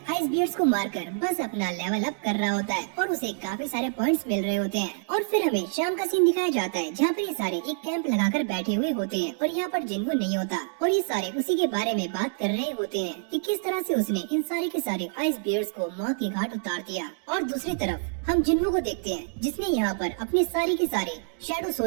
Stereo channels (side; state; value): left; silent; digital silence